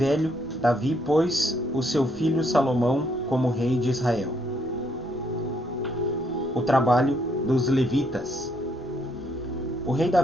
Davi pôs o seu filho Salomão como rei de Israel. O trabalho dos levitas. O rei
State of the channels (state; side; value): normal; both; correlation 0.71